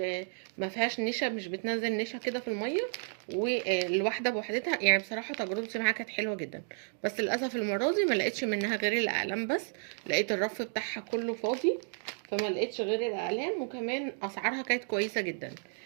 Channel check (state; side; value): silent; left; 56 dB below the other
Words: ما فيهاش نشا، مش بتنزل نشا كده في الميه، والواحده بوحدتها. يعني بصراحه تجربتي معاها كانت حلوه جدا. بس للاسف المره دي ما لقيتش منها غير الاقلام بس، لقيت الرف بتاعها كله فاضي، فما لقيتش غير الاقلام. وكمان اسعارها كانت كويسه جدا.